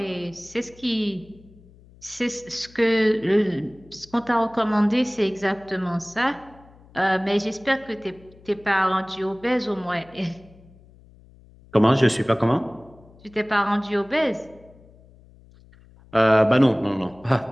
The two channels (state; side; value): noise; left; hum, 25 dB below the sound